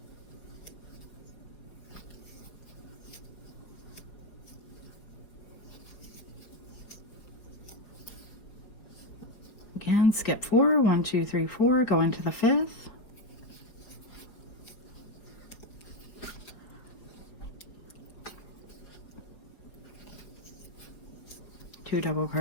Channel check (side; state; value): right; late; 5.1 ms